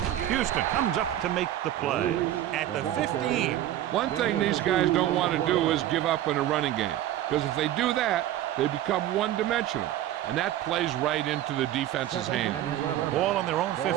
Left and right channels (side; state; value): left; quieter; 12.8 dB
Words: Houston comes up to make the play at the 15. One thing these guys don't want to do is give up in a running game, because if they do that, they become one-dimensional, and that plays right into the defense's Second hand. and 11. Ball on their own 15.